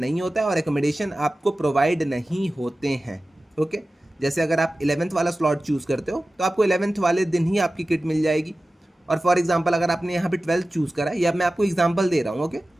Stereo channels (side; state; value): both; normal; correlation 0.95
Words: नहीं होता है और एकोमोडेशन आपको प्रोवाइड नहीं होते हैं। ओके, जैसे अगर आप 11th वाला स्लॉट चूज़ करते हो तो आपको 11th वाले दिन ही आपकी किट मिल जाएगी। और फॉर एग्जांपल अगर आपने यहाँ पे 12th चूज़ करा है, या मैं आपको एग्जांपल दे रहा हूँ। ओके,